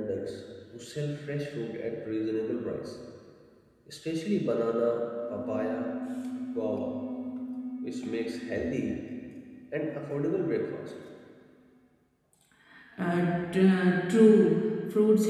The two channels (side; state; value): both; identical; correlation 1.00